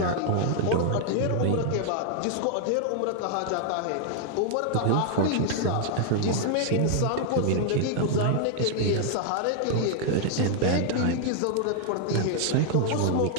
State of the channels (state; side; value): different; both; correlation 0.00